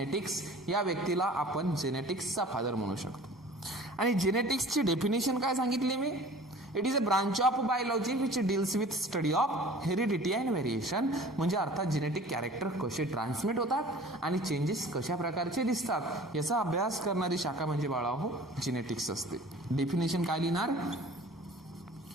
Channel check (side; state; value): both; normal; correlation 0.45